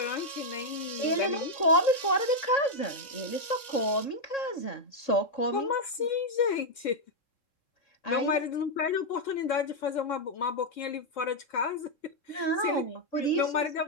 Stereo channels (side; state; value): right; late; 3.7 ms